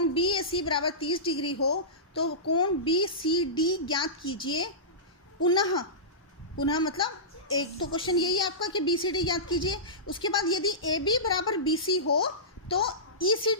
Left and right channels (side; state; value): both; normal; correlation -0.19